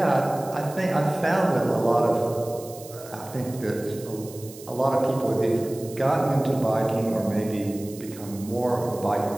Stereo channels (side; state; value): right; noise; hiss, 18 dB below the sound